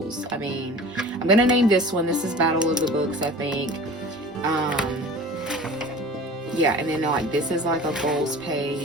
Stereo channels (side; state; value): both; normal; correlation 0.40